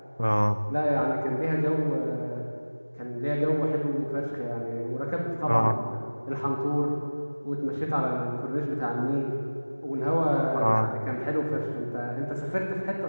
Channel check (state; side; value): inverted; both; correlation -1.00